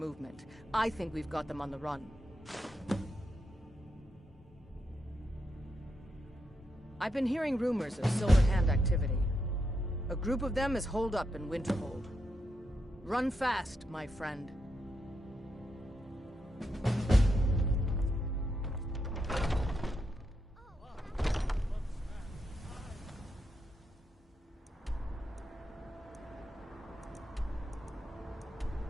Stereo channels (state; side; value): normal; both; correlation 0.83